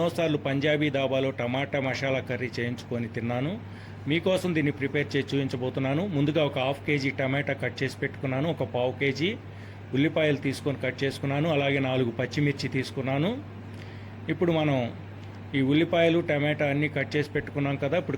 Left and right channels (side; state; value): both; identical; correlation 1.00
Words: పంజాబీ దాబాలో టమాటా మసాలా కర్రీ చేయించుకొని తిన్నాను. మీకోసం దీన్ని ప్రిపేర్ చేసి చూపించబోతున్నాను. ముందుగా ఒక హాఫ్ కేజీ టమాటా కట్ చేసి పెట్టుకున్నాను, ఒక పావు కేజీ ఉల్లిపాయలు తీసుకొని కట్ చేసుకున్నాను, అలాగే 4 పచ్చిమిర్చి తీసుకున్నాను. ఇప్పుడు మనం ఈ ఉల్లిపాయలు టమాటా అన్నీ కట్ చేసి పెట్టుకున్నాం కదా.